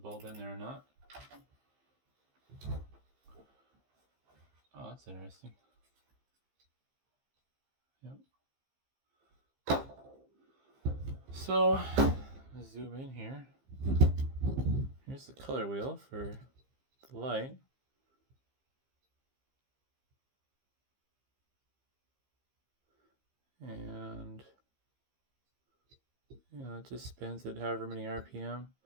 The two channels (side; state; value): left; late; 15 ms